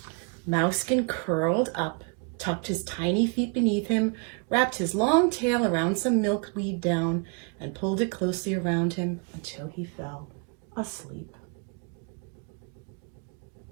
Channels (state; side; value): quieter; left; 33.9 dB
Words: Mousekin curled up, tucked his tiny feet beneath him, wrapped his long tail around some milkweed down, and pulled it closely around him until he fell asleep.